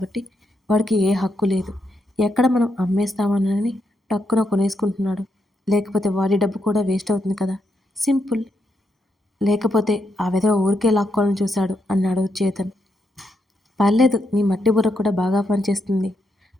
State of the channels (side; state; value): both; normal; correlation 0.81